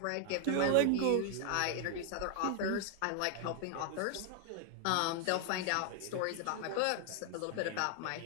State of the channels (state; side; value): different; both; correlation 0.00